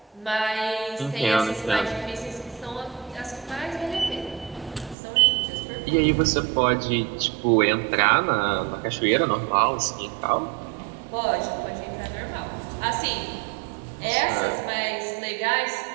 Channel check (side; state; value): left; drops out; at 5.0 s